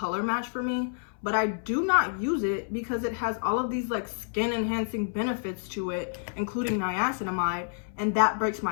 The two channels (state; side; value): silent; right; 59 dB below the other